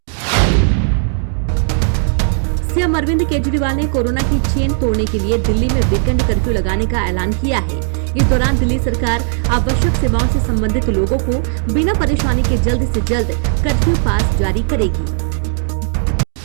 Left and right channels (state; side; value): silent; left; 59 dB below the other